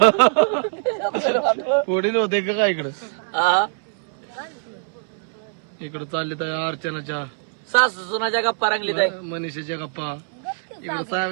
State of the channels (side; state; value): left; silent; 63 dB below the other